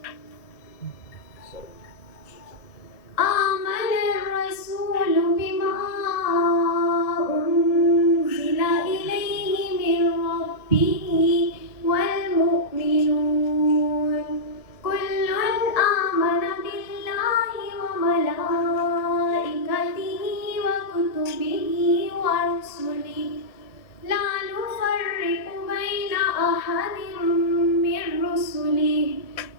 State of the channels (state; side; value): late; right; 1.7 ms